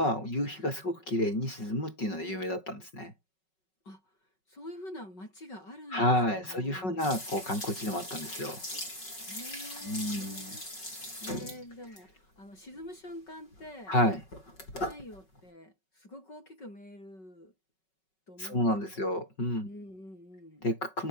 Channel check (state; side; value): late; right; 5.4 ms